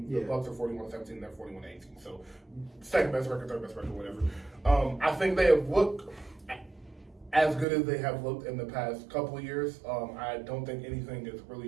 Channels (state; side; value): drops out; left; at 7.7 s